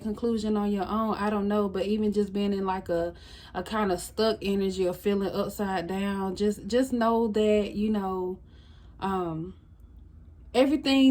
conclusion on your own. I don't know. But even just being in like a kind of stuck energy or feeling upside down, just know that, you know,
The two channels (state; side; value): identical; both; correlation 1.00